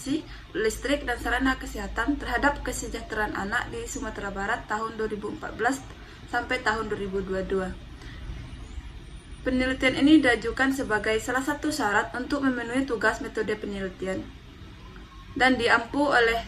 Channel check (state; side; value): identical; both; correlation 1.00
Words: Listrik, dan Sarana Kesehatan terhadap Kesejahteraan Anak di Sumatera Barat tahun 2014 sampai tahun 2022. Penelitian ini diajukan sebagai salah satu syarat untuk memenuhi tugas metode penelitian dan diampu oleh